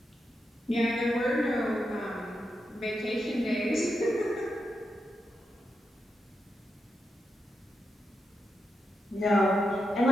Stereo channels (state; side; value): normal; both; correlation 0.86